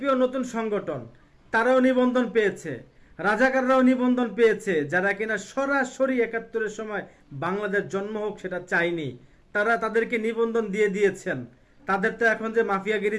নতুন সংগঠন, তারাও নিবন্ধন পেয়েছে, রাজাকাররাও নিবন্ধন পেয়েছে, যারা কিনা সরাসরি 71-এর সময় বাংলাদেশ জন্ম হোক সেটা চায়নি, তারা তাদেরকে নিবন্ধন দিয়ে দিয়েছেন। তাদের তো এখন যে মাফিয়াগিরি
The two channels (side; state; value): both; identical; correlation 1.00